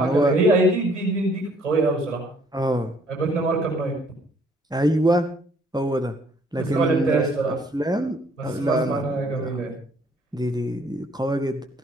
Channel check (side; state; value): both; normal; correlation 0.62